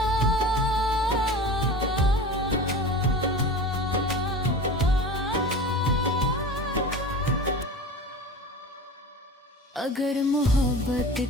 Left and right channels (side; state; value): both; normal; correlation 0.34